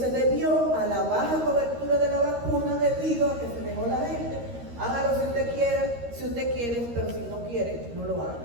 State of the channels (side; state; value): left; late; 13 ms